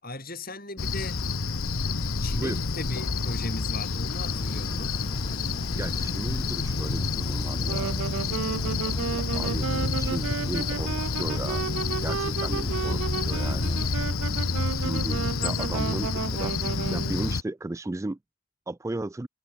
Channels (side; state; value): both; normal; correlation 0.56